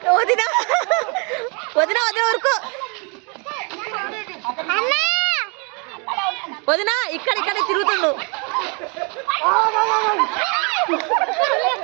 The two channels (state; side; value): quieter; left; 33.9 dB